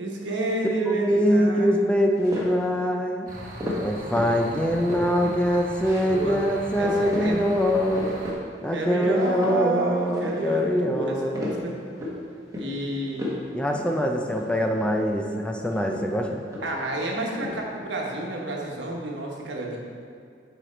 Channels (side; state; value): both; normal; correlation 0.69